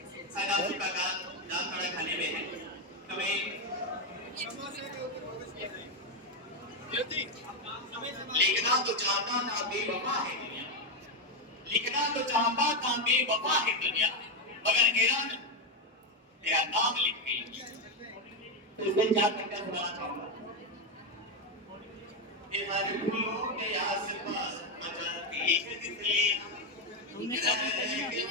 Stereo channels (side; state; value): both; normal; correlation 0.07